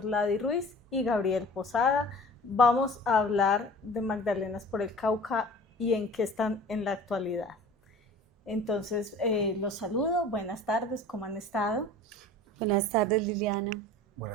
Ruiz y Gabriel Posada. Vamos a hablar de Magdalenas por el Cauca y en qué están en la actualidad. Entonces, los saludo. Buenas tardes, ¿cómo han estado? Buenas tardes, Liliana.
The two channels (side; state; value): both; normal; correlation 0.43